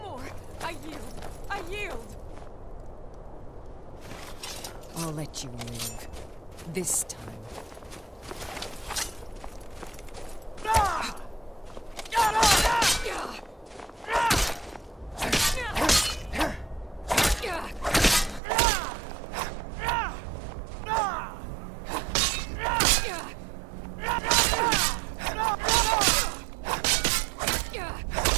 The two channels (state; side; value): drops out; left; at 18.4 s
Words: I yield! I yield! I'll let you live. This time.